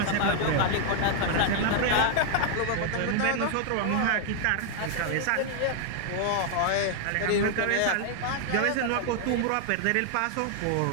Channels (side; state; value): both; different; correlation 0.00